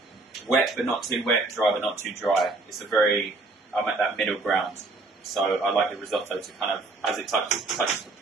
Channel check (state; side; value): quieter; left; 3.3 dB